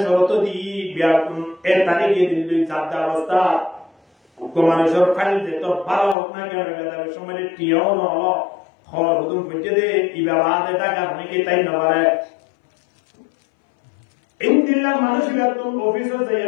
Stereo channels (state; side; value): drops out; right; at 6.2 s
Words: শরত দি বিয়াকুন এর তারিখে দিল্লি জাদা অবস্থা মানুষের ফাইল যে তো ভালো হোক না কেন বেদার সময় টিও ন খবর হুতুম পৌঁছে দে ইবাবাদ টাকা অনেকে তাই না পারে ইন্দিলা মানুষ বেতন অফিসে যাই